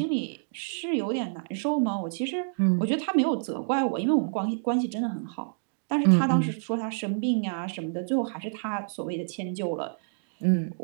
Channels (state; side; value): silent; left; digital silence